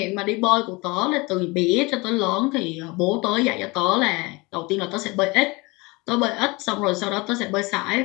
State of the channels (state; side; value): quieter; right; 25.2 dB